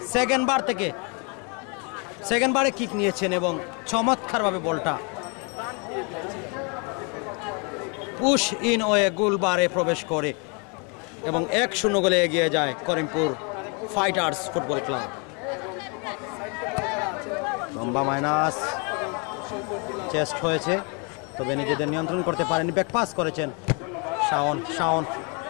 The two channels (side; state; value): right; quieter; 34.2 dB